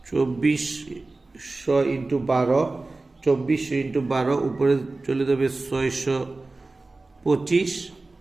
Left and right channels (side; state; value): left; quieter; 3.3 dB